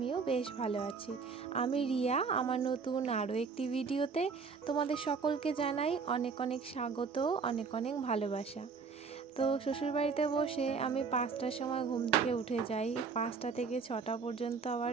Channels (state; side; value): quieter; left; 5.2 dB